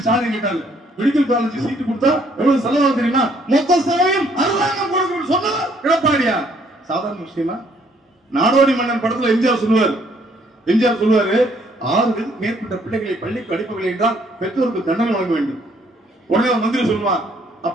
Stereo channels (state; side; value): normal; both; correlation 0.65